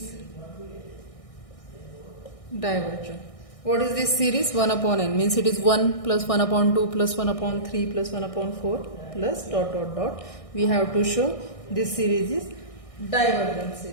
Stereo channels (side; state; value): right; late; 1.6 ms